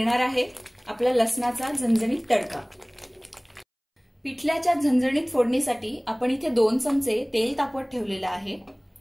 आहे आपला लसणाचा झणझणीत तडका। पिठल्याच्या झणझणीत फोडणीसाठी आपण इथे 2 चमचे तेल तापवत ठेवलेलं आहे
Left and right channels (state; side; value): identical; both; correlation 1.00